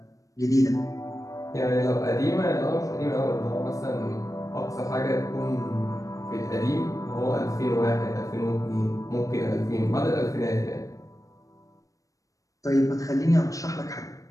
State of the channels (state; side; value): late; right; 0.16 ms